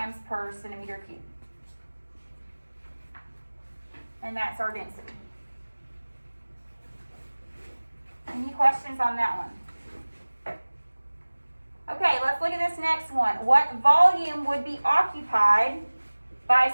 per centimeter cubed. And that's our density. Any questions on that one? Okay, let's look at this next one. What volume would be occupied by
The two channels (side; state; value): both; inverted; correlation -1.00